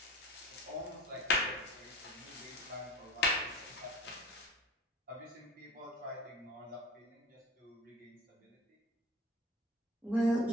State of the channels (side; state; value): both; normal; correlation 0.37